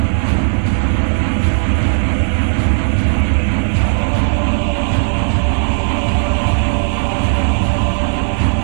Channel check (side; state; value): left; silent; 70 dB below the other